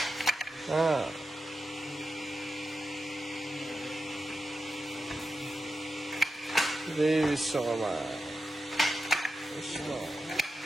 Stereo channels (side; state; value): both; normal; correlation 0.90